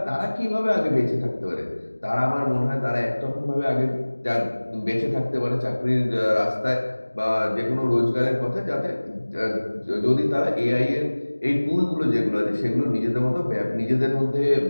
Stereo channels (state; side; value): inverted; both; correlation -1.00